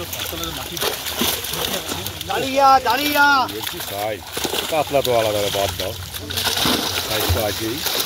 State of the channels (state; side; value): identical; both; correlation 1.00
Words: দাঁড়িয়া দাঁড়িয়া। বলছি সাইজ, কাতলা তো আলাদা বাদ দাও, সাইজ তো আছেই।